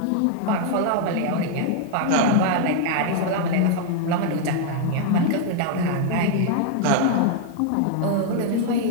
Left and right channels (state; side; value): different; both; correlation 0.00